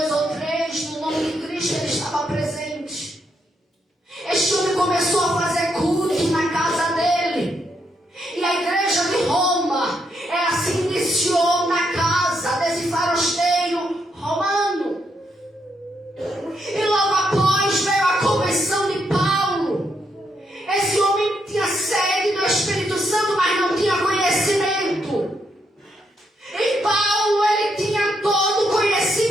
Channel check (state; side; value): normal; both; correlation 0.78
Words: ou 3, no nome de Cristo, ele estava presente. Este homem começou a fazer culto na casa dele. E a igreja de Roma, ela se iniciou na casa desse farasteiro romano. E logo após veio a conversão de Paulo. Esse homem tinha sede do Espírito Santo, mas não tinha conhecimento. E Paulo, ele tinha todo o